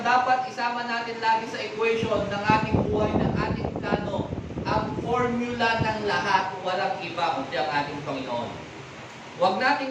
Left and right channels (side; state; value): both; identical; correlation 1.00